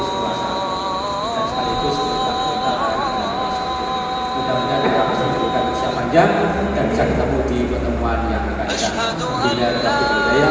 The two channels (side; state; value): both; identical; correlation 1.00